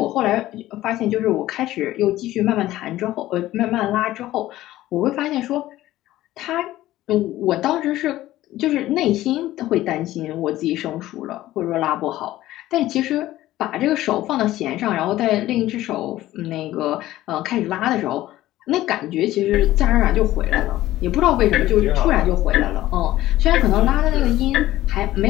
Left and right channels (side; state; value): right; quieter; 15.3 dB